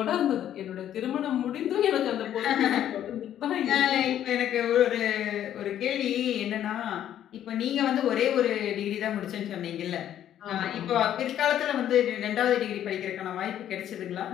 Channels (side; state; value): right; quieter; 10.9 dB